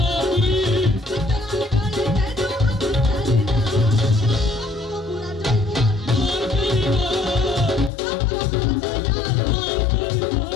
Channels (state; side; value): drops out; right; at 7.9 s